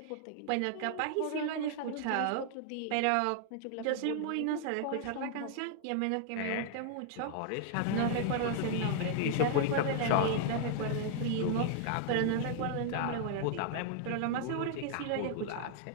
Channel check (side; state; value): both; different; correlation 0.00